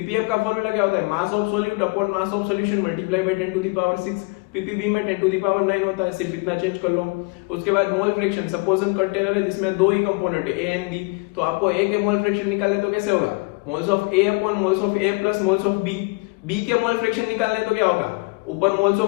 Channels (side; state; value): right; quieter; 28.4 dB